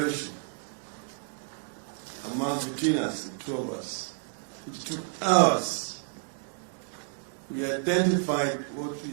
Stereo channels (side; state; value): left; silent; 58 dB below the other